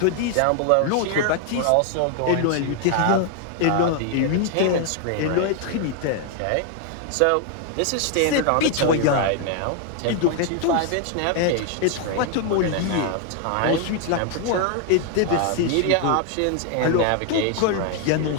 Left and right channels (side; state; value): both; different; correlation 0.00